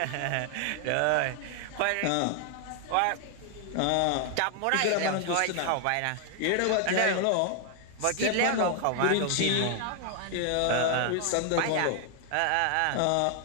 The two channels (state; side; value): different; both; correlation 0.00